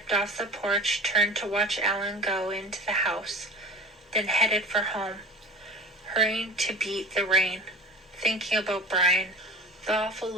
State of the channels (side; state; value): both; normal; correlation 0.37